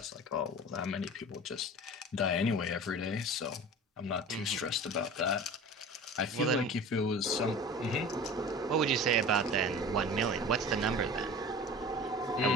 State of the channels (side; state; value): both; normal; correlation 0.37